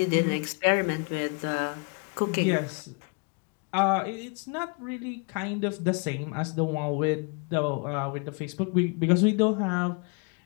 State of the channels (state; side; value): quieter; right; 35.1 dB